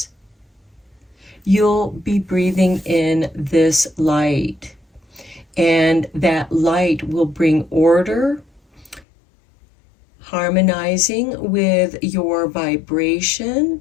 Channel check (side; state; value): right; drops out; at 9.1 s